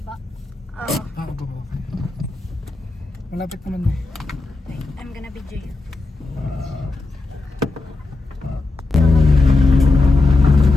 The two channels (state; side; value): quieter; right; 3.3 dB